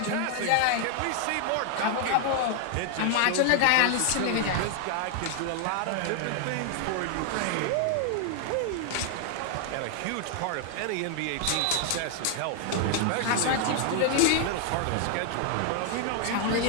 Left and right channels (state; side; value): different; both; correlation 0.00